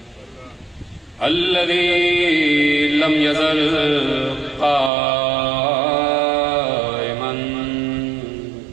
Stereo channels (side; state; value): left; drops out; at 4.9 s